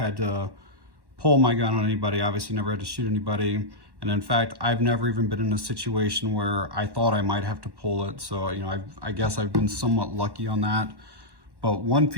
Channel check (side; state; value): left; late; 1.1 ms